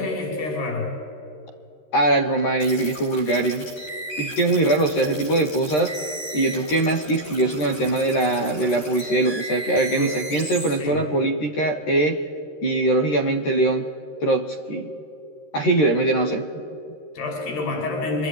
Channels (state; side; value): late; right; 13 ms